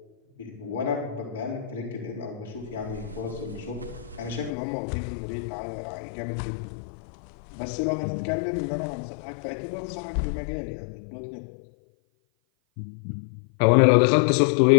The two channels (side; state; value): right; drops out; at 4.5 s